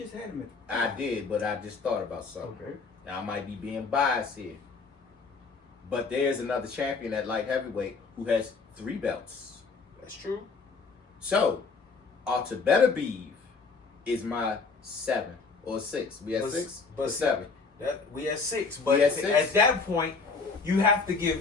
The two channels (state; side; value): quieter; right; 4.6 dB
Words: had him at I did, but I just thought about something. Okay. Now I might be being biased here, but there's another champion at light heavyweight who has 3 belts. That's true. So, Beterbiev is my 7 or 6. We had 6, but 7. We had 6, but at that point, you have to give